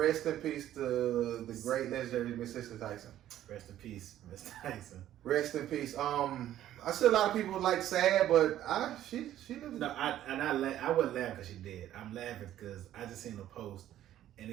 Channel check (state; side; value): quieter; left; 12.4 dB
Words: in peace to the great legendary Miss Cicely Tyson. Rest in peace, Miss Tyson. Rest in peace. I see a lot of people like sad, but she lives. No, I wasn't laughing because she dead. I'm laughing because I just seen a post and